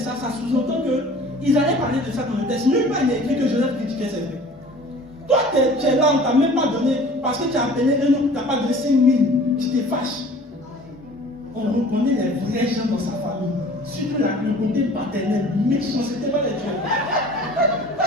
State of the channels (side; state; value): both; normal; correlation 0.47